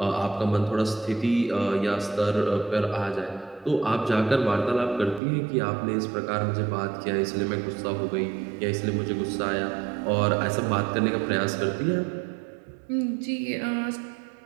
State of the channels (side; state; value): left; drops out; at 5.2 s